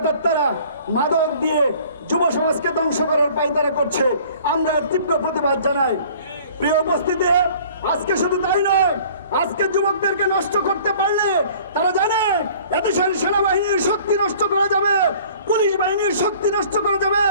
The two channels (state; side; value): inverted; both; correlation -0.50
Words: মাদক দিয়ে যুব সমাজকে ধ্বংস করার পায়তারা করছে। আমরা তীব্র প্রতিবাদ জানাই। প্রিয় উপস্থিতি, আজকে শুধু তাই নয়, আজকে যুবকদেরকে নষ্ট করতে পারলে তারা জানে এদেশের সেনাবাহিনীর শক্তি নষ্ট করা যাবে, পুলিশ বাহিনীর শক্তি নষ্ট করা যাবে।